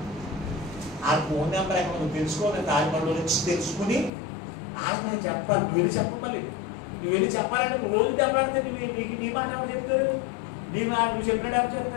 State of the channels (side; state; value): right; drops out; at 4.1 s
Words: ఆ ఫోన్ నెంబర్ ఎక్కడ నువ్వు తెలుసుకోవాలి, తాజమహల్లో నుంచి తెలుసుకుని వాళ్ళకి నేను చెప్పాలి. నువ్వు వెళ్ళి చెప్పమని, నువ్వు వెళ్ళి చెప్పాలంటే నువ్వు రోజు దెబ్బలాడితే నీకు నీ మాట ఎవరు చెప్తారు? నువ్వు చెప్పినట్టు ఎవరు